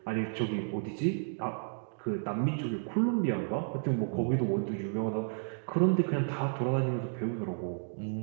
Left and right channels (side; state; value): left; silent; digital silence